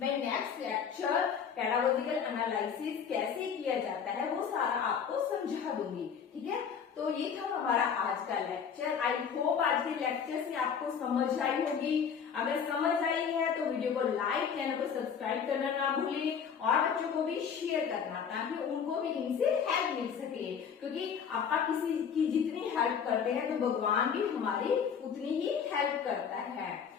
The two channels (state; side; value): quieter; right; 7.1 dB